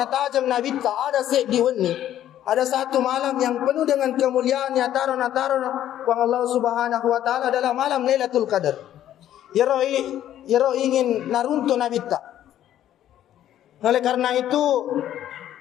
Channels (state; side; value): quieter; right; 11.8 dB